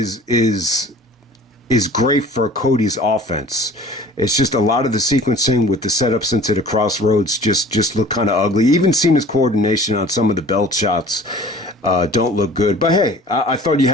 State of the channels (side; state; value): both; normal; correlation 0.46